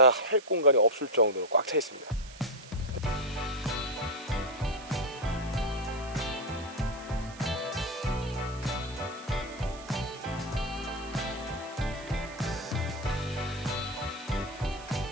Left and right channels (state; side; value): noise; right; hiss, 18 dB below the sound